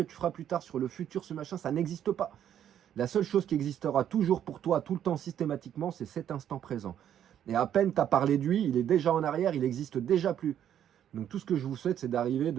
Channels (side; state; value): left; quieter; 10.1 dB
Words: tu feras plus tard, sur le futur, ce machin, ça n'existe pas. La seule chose qui existera toujours pour toi, tout le temps, systématiquement, c'est cet instant présent. Et à peine tu as parlé de lui, il est déjà en arrière, il n'existe déjà plus. Donc tout ce que je vous souhaite, c'est d'arriver